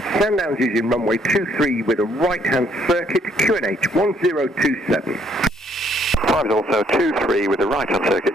Sandown's using runway 23 with a right-hand circuit, QNH 1027. 5 is also 23 with a right-hand circuit,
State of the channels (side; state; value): both; normal; correlation 0.67